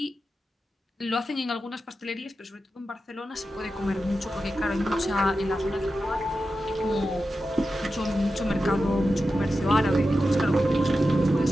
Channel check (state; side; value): normal; both; correlation 0.91